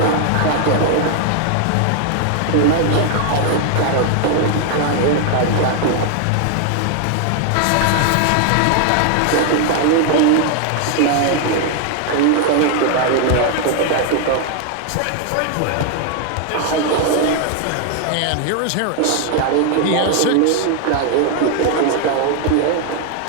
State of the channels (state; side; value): different; both; correlation 0.00